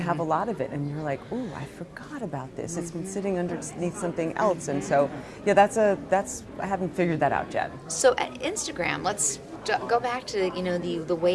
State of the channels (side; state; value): both; identical; correlation 1.00